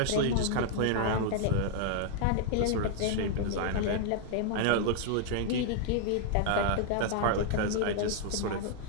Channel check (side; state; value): both; different; correlation 0.00